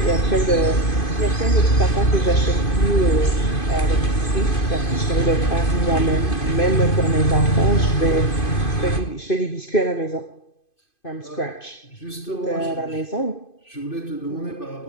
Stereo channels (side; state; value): right; late; 2.5 ms